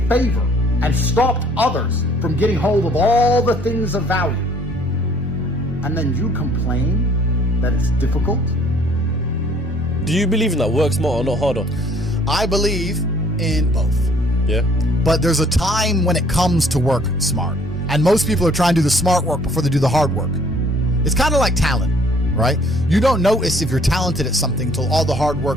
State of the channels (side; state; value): both; normal; correlation 0.59